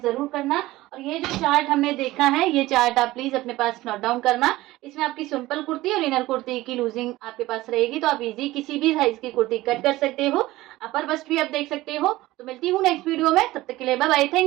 जरूर करना। और ये जो चार्ट हमने देखा है, ये चार्ट आप प्लीज अपने पास नोट डाउन करना। इसमें आपकी सिंपल कुर्ती और इनर कुर्ती की लूजिंग आपके पास रहेगी, तो आप इजी किसी भी साइज की कुर्ती कट कर सकते हो। अपर बस्ट भी आप देख सकते हो। तो मिलती हूँ नेक्स्ट वीडियो में, तब तक के लिए बाय बाय,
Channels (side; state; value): left; quieter; 17.7 dB